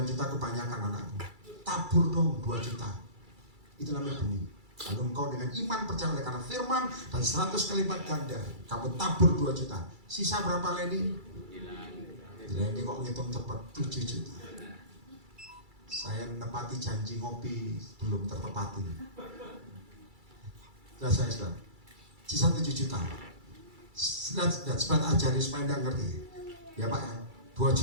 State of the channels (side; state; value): left; late; 2.3 ms